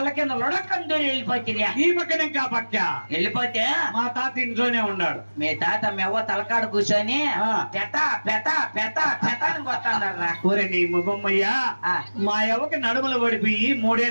కింద లొడకం దూరి వెళ్ళిపోతుంది. ఈ పక్కన ఇంకా పక్క వెళ్ళిపోతే మా తాత ఇంట్లోనే ఉన్నాడు. మీ తాత మీ అవ్వ తలకాడు కూర్చొని పెత పెత పెత పెత అని కొత్తన్నారా. ఊరే నీ ముఖమ్మయ్యా, మా అవ్వకి నడుములు పడిపోయి 3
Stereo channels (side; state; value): both; inverted; correlation -1.00